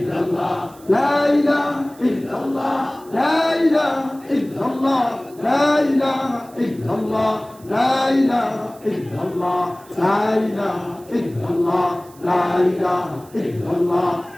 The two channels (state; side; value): noise; right; hiss, 25 dB below the sound